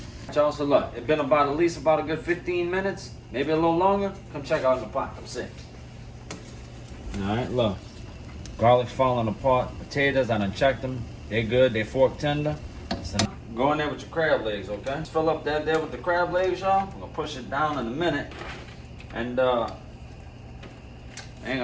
Y'all, so look, it's been at least about a good 15 minutes, maybe a little longer. Come check out the pot. Come see. All right, look. Garlic's falling apart. Potatoes, I done checked them. They good. They fork tender. So go in there with your crab legs, okay? Just fill up that there with the crab legs, y'all. I'm gonna push it down in a minute. And I ain't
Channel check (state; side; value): identical; both; correlation 1.00